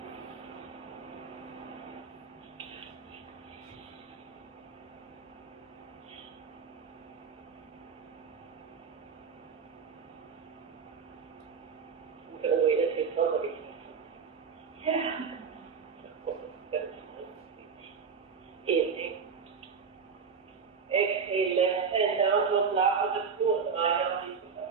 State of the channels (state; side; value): quieter; left; 6.0 dB